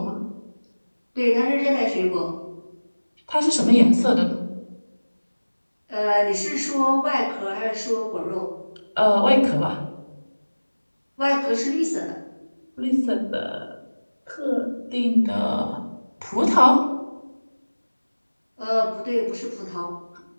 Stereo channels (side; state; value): both; inverted; correlation -1.00